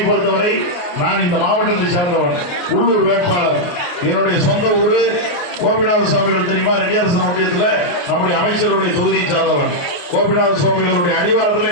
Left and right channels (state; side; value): late; right; 28 ms